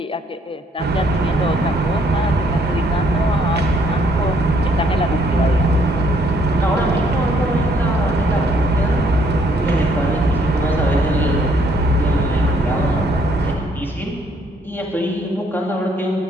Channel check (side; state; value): both; normal; correlation 0.67